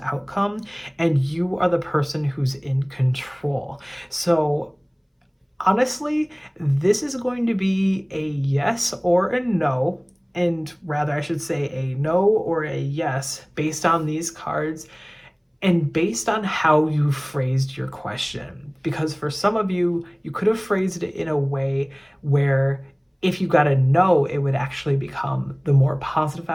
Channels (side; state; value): both; identical; correlation 1.00